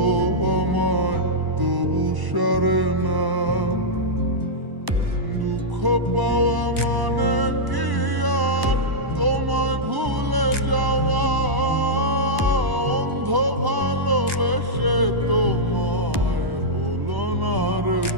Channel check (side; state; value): left; late; 1.0 ms